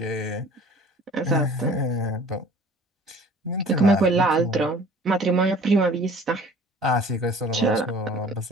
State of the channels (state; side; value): normal; both; correlation 0.48